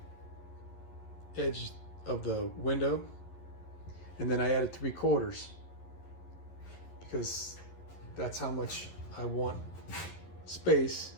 edge of the window, and then I added 3/4 because that's how much I want space,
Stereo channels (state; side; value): late; right; 11 ms